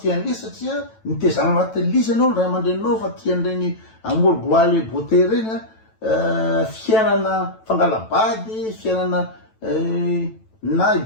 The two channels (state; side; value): late; right; 9.1 ms